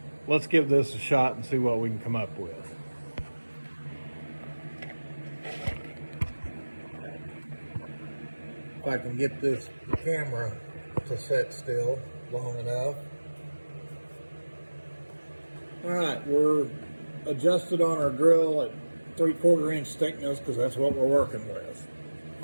let's give this a shot and see what we can come up with. If I can get this camera to sit still long enough. All right, we're adjusted on our drill at 3/4 inch thickness because that's what we're working with.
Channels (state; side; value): inverted; both; correlation -1.00